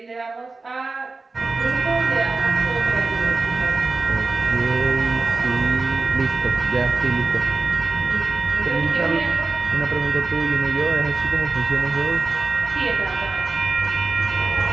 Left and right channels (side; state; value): left; quieter; 3.8 dB